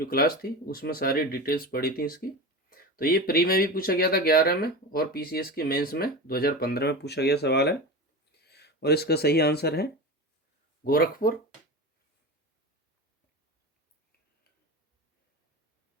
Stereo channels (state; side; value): normal; both; correlation 0.26